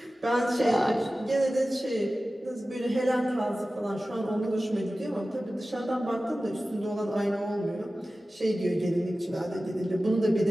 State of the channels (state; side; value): normal; both; correlation 0.96